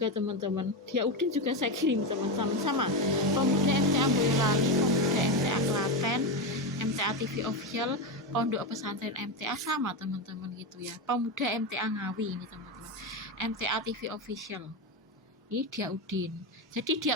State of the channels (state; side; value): normal; both; correlation 0.13